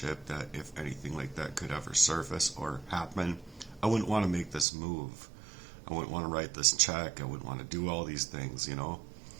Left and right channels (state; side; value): drops out; left; at 4.7 s